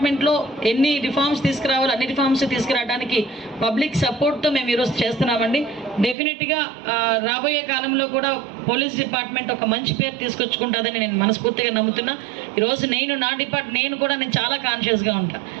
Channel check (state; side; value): drops out; left; at 6.2 s